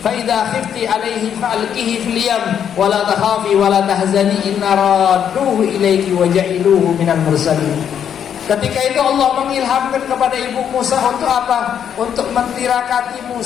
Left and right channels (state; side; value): quieter; right; 8.7 dB